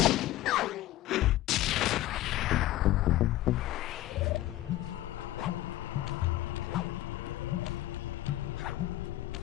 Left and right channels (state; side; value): quieter; right; 15.1 dB